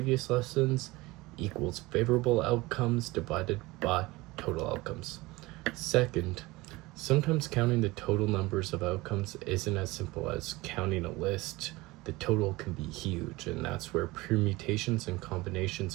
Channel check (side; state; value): left; quieter; 21.2 dB